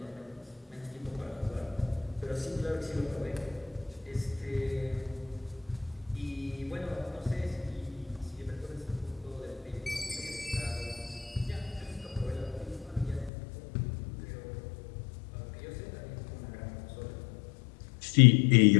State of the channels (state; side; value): drops out; right; at 13.3 s